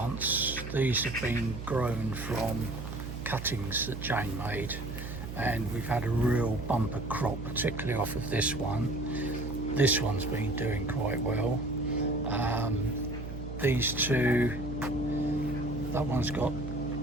these have been grown from cuttings that Jane made, and we've had a real bumper crop, particularly off of this one. This one's been doing quite well. These two, that one's got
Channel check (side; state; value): right; noise; hum, 8 dB below the sound